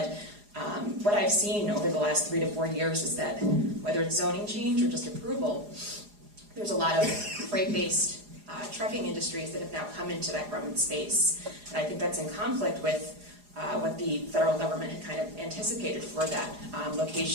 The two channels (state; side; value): late; left; 4.8 ms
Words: what I've seen over the last 3 to 4 years is that whether it's zoning change or just approval, there's a lot of freight-based trucking industries that have now come into that Roman space. And I think that's in conflict with what the federal government had kind of anticipated for that